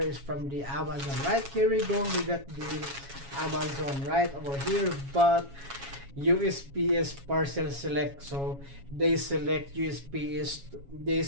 from the Amazon, right? Here we go. We got the Amazon right over here, but USPS parcel select. So they select USPS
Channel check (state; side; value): late; left; 7.2 ms